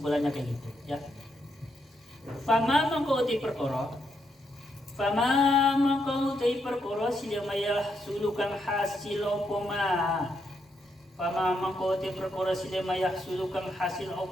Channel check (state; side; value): normal; both; correlation 0.79